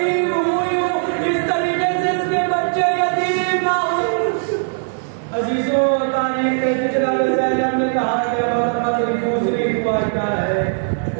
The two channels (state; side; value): silent; left; digital silence